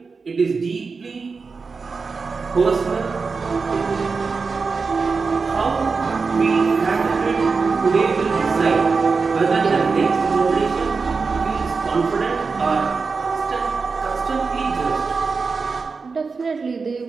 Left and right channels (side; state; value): left; quieter; 4.7 dB